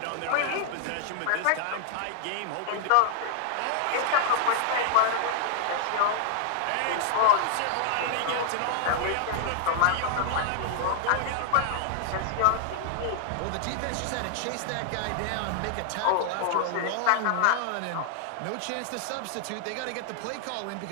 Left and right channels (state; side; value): different; both; correlation -0.01